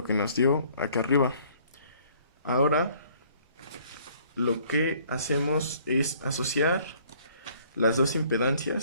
que nos dio acá arriba. Ahora lo que hacemos es asociar las dos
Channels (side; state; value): both; inverted; correlation -0.59